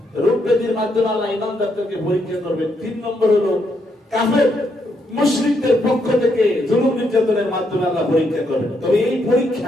রোগ ব্যাধির মাধ্যমে আল্লাহ ঈমানদারদেরকে পরীক্ষা করবেন। তিন নম্বর হলো কাফের মুশরিকদের পক্ষ থেকে জুলুম নির্যাতনের মাধ্যমে আল্লাহ পরীক্ষা করবেন। তবে এই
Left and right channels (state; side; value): normal; both; correlation 0.77